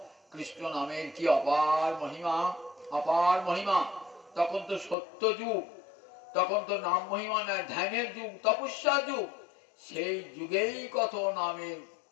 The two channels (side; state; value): right; drops out; at 5.0 s